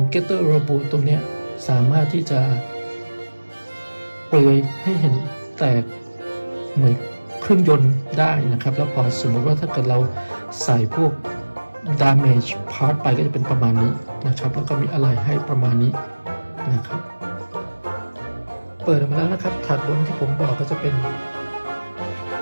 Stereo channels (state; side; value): inverted; both; correlation -1.00